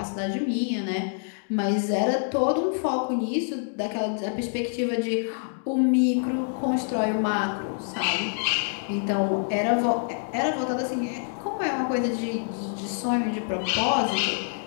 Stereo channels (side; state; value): right; silent; digital silence